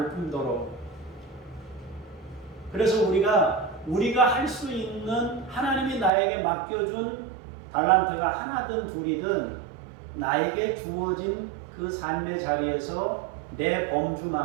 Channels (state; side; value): drops out; left; at 6.1 s